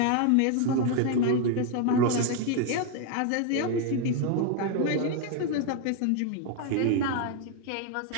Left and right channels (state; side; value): different; both; correlation 0.01